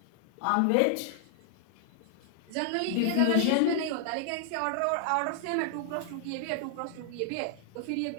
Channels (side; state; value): both; different; correlation 0.00